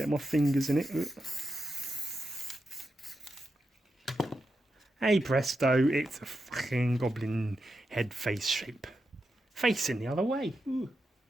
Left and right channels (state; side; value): normal; both; correlation 0.87